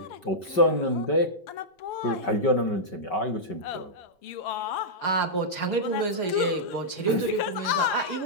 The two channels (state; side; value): late; right; 5.2 ms